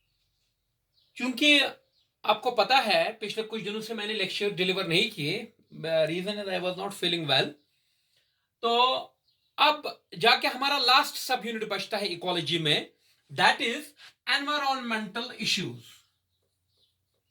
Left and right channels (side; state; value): both; identical; correlation 1.00